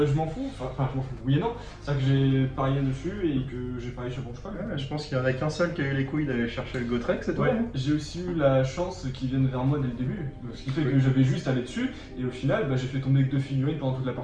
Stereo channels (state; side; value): identical; both; correlation 1.00